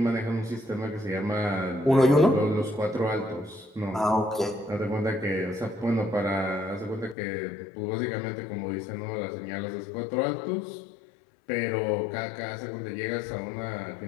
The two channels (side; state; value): right; drops out; at 7.2 s